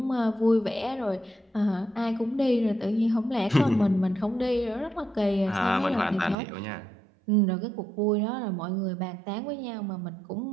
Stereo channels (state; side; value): drops out; left; at 6.4 s